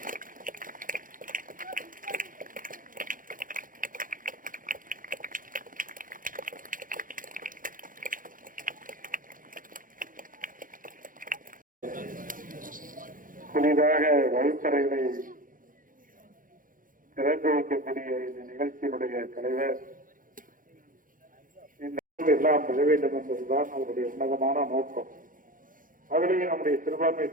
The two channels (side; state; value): left; late; 0.40 ms